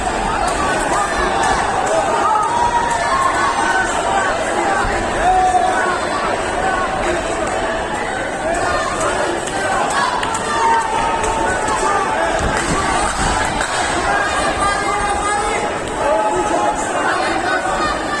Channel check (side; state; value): both; identical; correlation 1.00